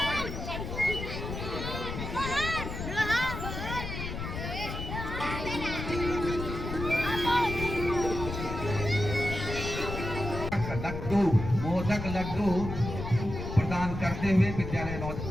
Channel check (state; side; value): noise; left; rumble, 6 dB below the sound